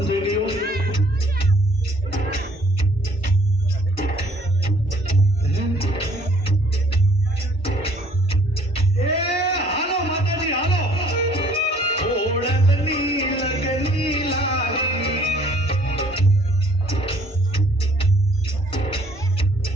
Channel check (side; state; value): both; normal; correlation 0.59